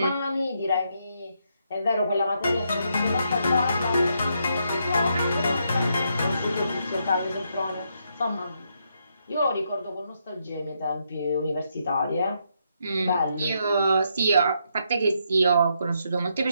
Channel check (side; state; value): both; inverted; correlation -0.77